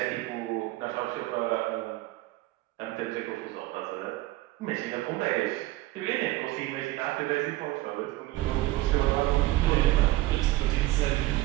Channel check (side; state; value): left; quieter; 17.6 dB